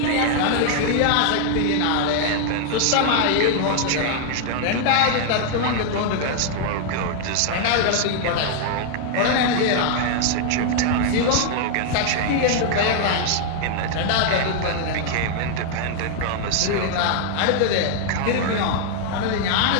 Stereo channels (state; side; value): different; both; correlation 0.00